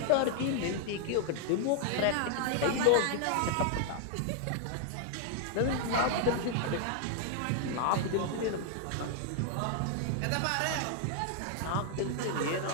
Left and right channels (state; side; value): different; both; correlation 0.00